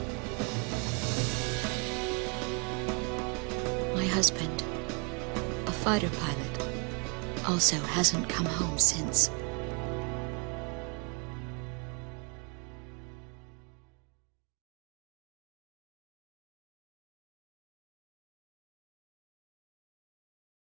My husband, a fighter pilot, also hasn't come home since.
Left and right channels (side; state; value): left; quieter; 33.7 dB